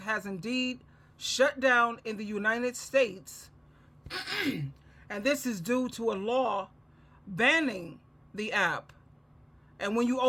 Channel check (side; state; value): both; identical; correlation 1.00